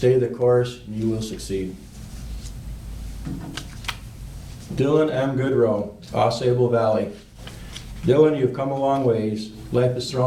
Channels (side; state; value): both; identical; correlation 1.00